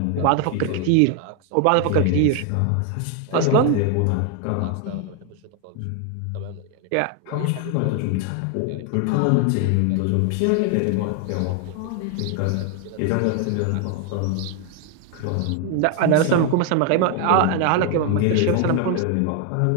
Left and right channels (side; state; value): both; different; correlation 0.00